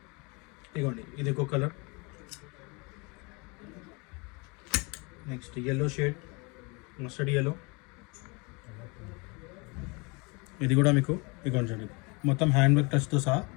ఇదిగోండి, ఇది ఒక colour. Next yellow shade, mustard yellow. ఇది కూడా మీకు ఇదిగోండి, మొత్తం హ్యాండ్ వర్క్ టచ్తో సహా.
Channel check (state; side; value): quieter; right; 29.2 dB